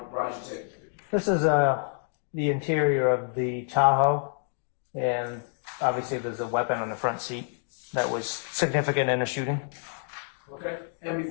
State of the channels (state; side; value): silent; right; digital silence